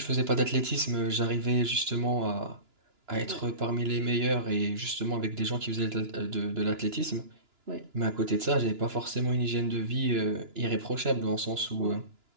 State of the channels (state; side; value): late; left; 2.9 ms